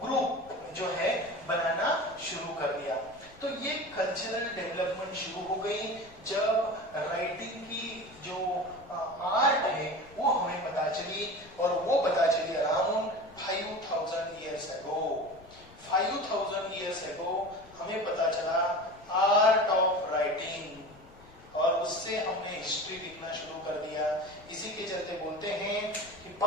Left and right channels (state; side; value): noise; left; rumble, 23 dB below the sound